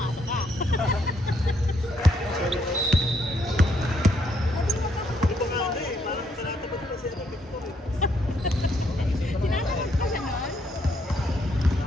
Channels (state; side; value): normal; both; correlation 0.73